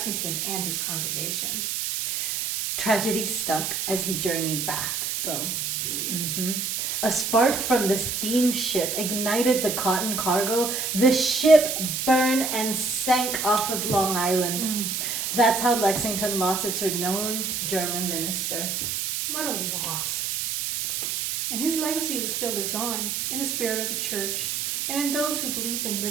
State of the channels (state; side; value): noise; right; hiss, 1 dB below the sound